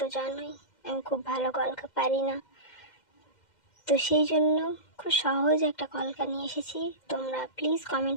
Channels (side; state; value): right; late; 2.1 ms